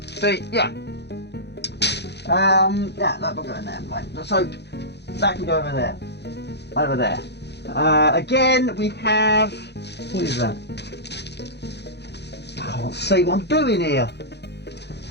See, yeah. Yeah, that will go in there. Right. So that can go over there. Over there. Again, we have. What is that? I can't see what I'm doing here.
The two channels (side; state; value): right; late; 0.49 ms